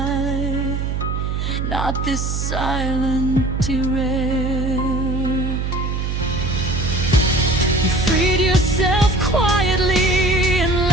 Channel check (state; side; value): noise; right; hum, 1 dB below the sound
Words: not this silent derail. You freed yourself quietly and